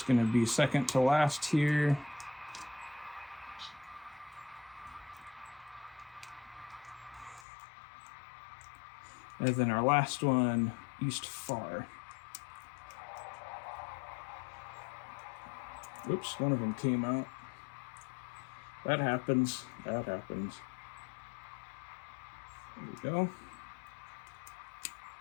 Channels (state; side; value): drops out; right; at 7.5 s